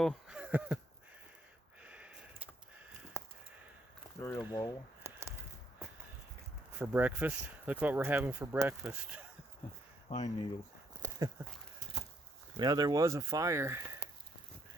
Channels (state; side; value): normal; both; correlation 0.71